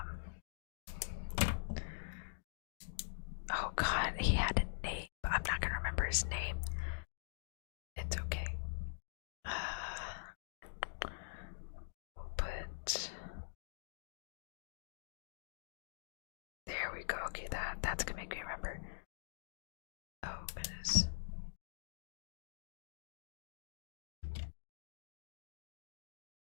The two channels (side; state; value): right; silent; digital silence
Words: Oh god, he had a name, but I'm not gonna remember his name. It's okay. We'll put. There we go. Okay, that's gonna make me remember. Oh goodness.